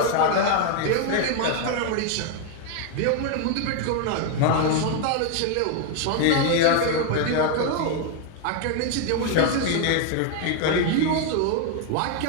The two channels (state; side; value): different; both; correlation 0.01